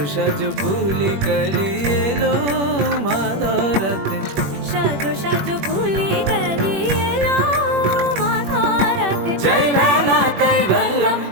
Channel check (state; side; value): late; left; 21 ms